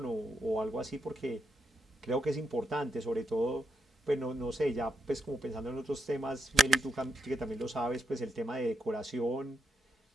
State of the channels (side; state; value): both; normal; correlation 0.83